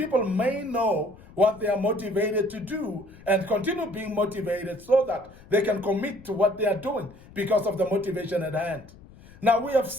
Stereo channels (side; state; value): left; noise; rumble, 21 dB below the sound